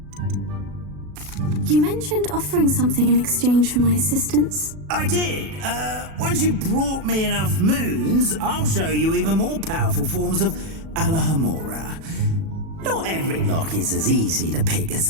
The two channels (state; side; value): late; left; 37 ms